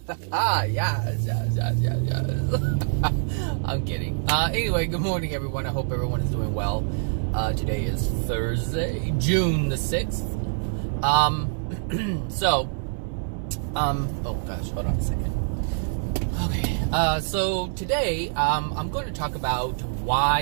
Yes. I'm kidding. Anyway, good morning, everyone. I hope everyone is doing well. Today is Thursday, June the 6th. Oh gosh, hold on a second. Okay. So today, I'm going to talk about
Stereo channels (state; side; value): silent; left; digital silence